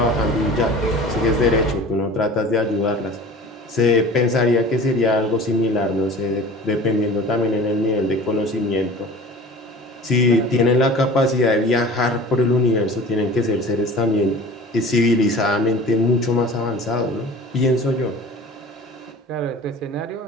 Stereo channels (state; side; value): normal; both; correlation 0.41